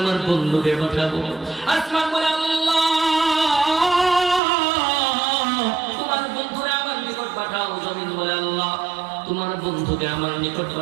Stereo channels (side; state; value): left; drops out; at 4.4 s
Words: আমার বন্ধুকে পাঠাবো, আসমান বলে, আল্লাহ, তোমার বন্ধুরে আমার নিকট পাঠাও। জমিন বলে, আল্লাহ, তোমার বন্ধুকে আমার নিকট